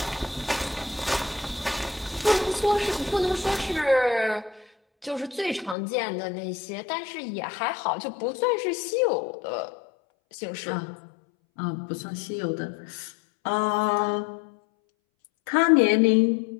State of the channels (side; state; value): right; drops out; at 5.8 s